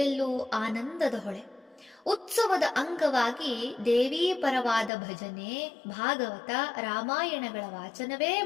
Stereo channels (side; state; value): right; drops out; at 4.9 s